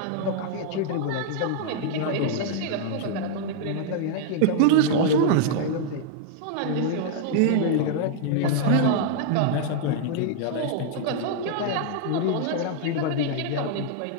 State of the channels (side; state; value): both; different; correlation -0.01